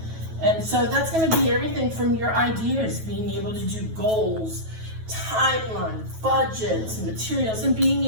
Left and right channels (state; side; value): late; left; 9.2 ms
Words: And so that's going to be everything from your ideas, being able to do goals, timeline, budgets, materials, and being